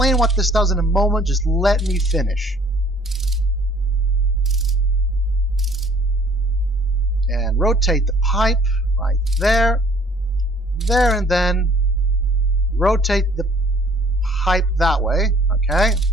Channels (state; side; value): normal; both; correlation 0.57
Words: what this does in a moment. Just let me finish. And rotate the pipe right there, there, and then rotate the pipe that way, okay?